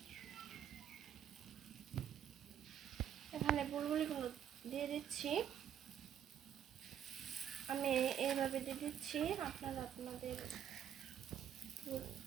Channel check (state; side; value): quieter; left; 9.7 dB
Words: এখানে বুলবুলিগুলো দিয়ে দিচ্ছি। আমি এইভাবে দিয়ে দিচ্ছি, আপনারা আপনাদের